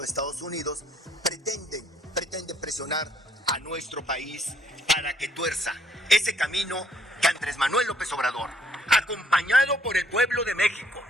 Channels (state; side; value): normal; both; correlation 0.67